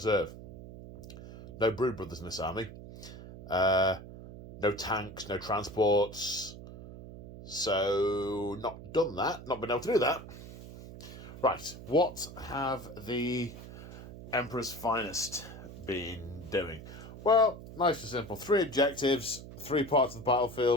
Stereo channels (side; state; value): right; noise; hum, 14 dB below the sound